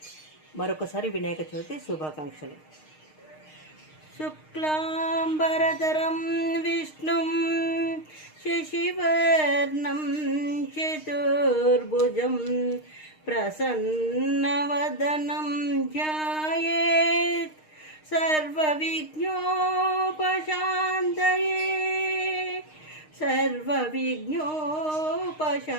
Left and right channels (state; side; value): late; right; 6.5 ms